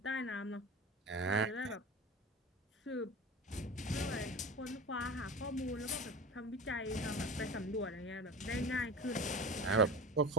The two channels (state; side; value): normal; both; correlation 0.31